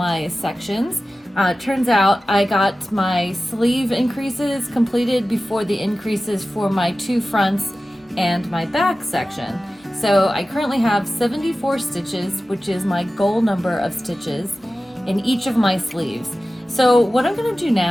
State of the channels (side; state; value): both; normal; correlation 0.95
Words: sections. Turns out I got my sleeve increases completed before the increases for my two fronts and my back section. So I currently have 74 stitches, which is my goal number of stitches in each of my sleeves. So what I'm going to do